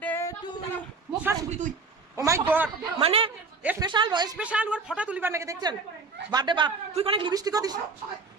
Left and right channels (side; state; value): left; quieter; 4.3 dB